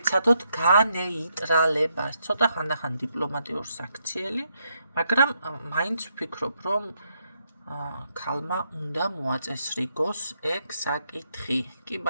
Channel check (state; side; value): inverted; both; correlation -0.79